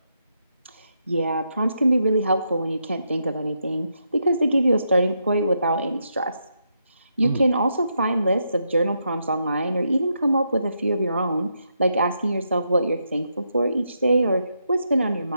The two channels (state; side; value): inverted; both; correlation -0.81